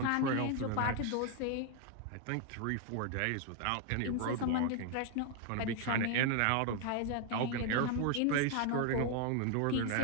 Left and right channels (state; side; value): different; both; correlation 0.01